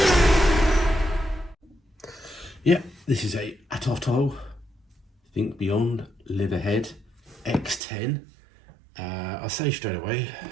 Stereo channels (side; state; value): left; drops out; at 7.8 s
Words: Yeah, this is a ATOTO Think Beyond Live Ahead X10. I'll say straight away,